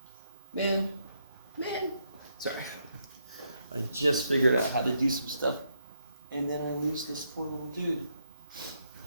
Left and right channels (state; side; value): inverted; both; correlation -0.78